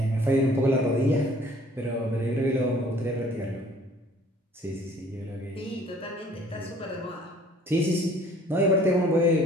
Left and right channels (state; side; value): normal; both; correlation 0.55